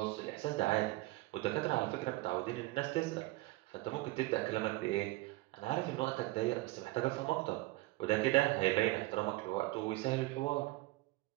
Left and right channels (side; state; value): left; quieter; 20.1 dB